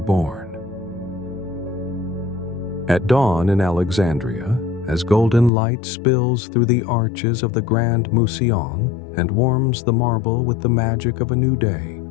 born. At dawn in Alexandria, as golden light spills through the arches of the Grand Museion and warms the marble with the magic of a new day,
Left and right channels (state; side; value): drops out; right; at 5.5 s